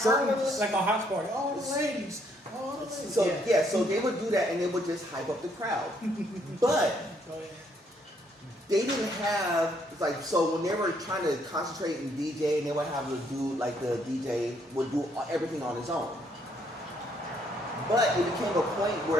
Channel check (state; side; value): normal; both; correlation 0.70